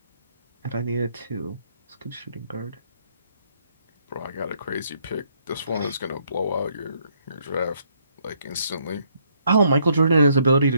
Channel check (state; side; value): inverted; both; correlation -0.70